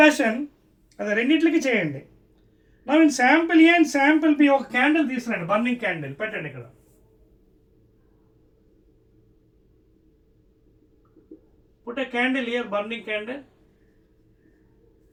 అది రెండింటికి చేయండి. Now in sample A and sample B ఒక క్యాండిల్ తీసుకురండి, burning candle పెట్టండి ఇక్కడ. Put a candle here, burning candle.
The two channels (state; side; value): identical; both; correlation 1.00